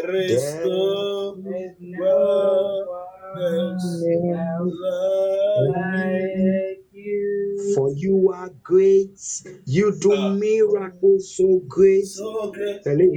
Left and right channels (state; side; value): identical; both; correlation 1.00